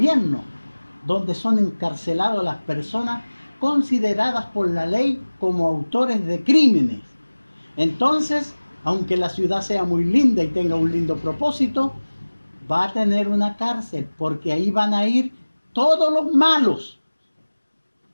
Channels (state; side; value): inverted; both; correlation -1.00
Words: donde son encarceladas las personas consideradas por la ley como autores de crímenes. Entonces, aunque la ciudad sea muy linda y tenga un lindo propósito, va a tener una cárcel, porque ahí van a ir todos los malos.